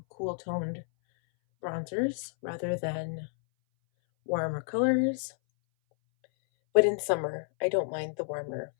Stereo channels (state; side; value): silent; right; 58 dB below the other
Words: cool toned bronzers rather than warmer colors. But in summer, I don't mind the warmer